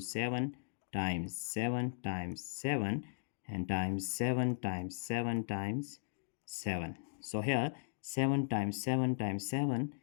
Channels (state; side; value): silent; right; digital silence